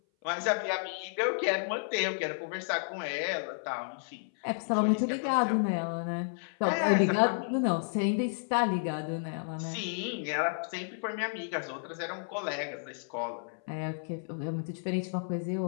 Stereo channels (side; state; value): right; silent; 57 dB below the other